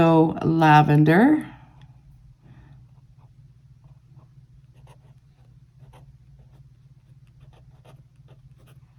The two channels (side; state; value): both; identical; correlation 1.00